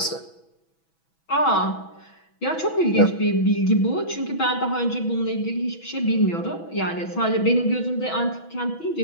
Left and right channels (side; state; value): right; late; 6.1 ms